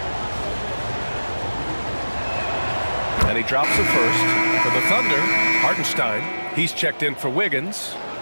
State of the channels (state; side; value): inverted; both; correlation -1.00